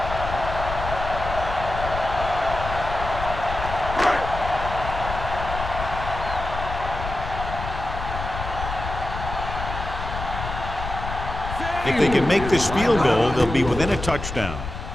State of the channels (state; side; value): noise; left; rumble, 7 dB below the sound